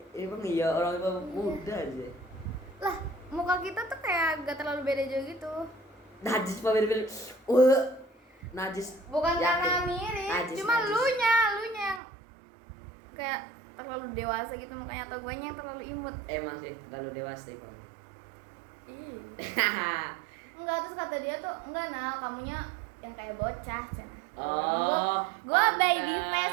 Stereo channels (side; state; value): left; drops out; at 12.0 s